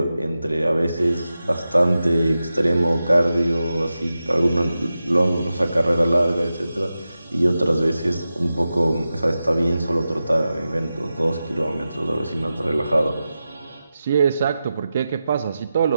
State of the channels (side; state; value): both; inverted; correlation -0.92